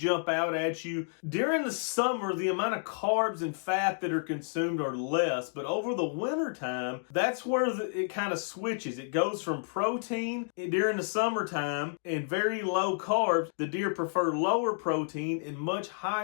out at you. During the summer, the amount of carbs and fat that are consumed are less, but over the winter time, that's where it kind of switches. It goes from protein during the summertime and very low carbs. The deer prefer lower protein and much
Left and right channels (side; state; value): right; silent; digital silence